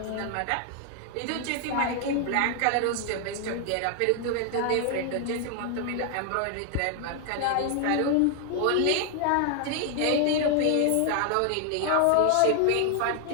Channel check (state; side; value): different; both; correlation 0.00